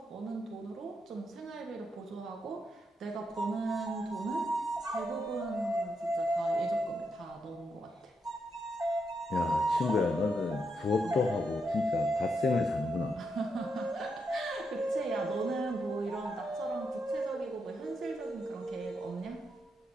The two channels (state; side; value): normal; both; correlation 0.82